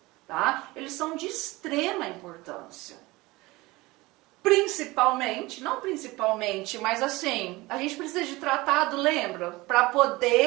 tá? Eles são de extrema importância. Principalmente, não principalmente, mas assim, a gente precisa de tratado, lembra? Para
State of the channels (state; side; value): quieter; left; 21.2 dB